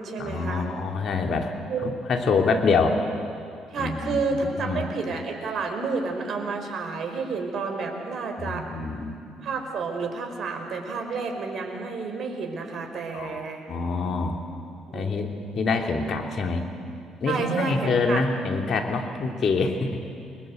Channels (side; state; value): both; normal; correlation 0.70